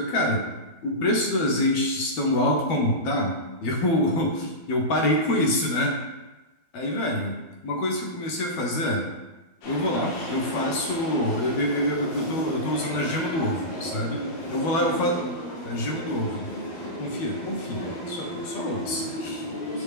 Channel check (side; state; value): right; late; 12 ms